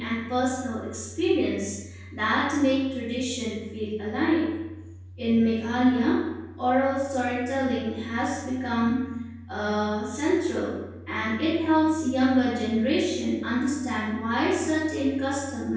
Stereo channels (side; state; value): both; identical; correlation 1.00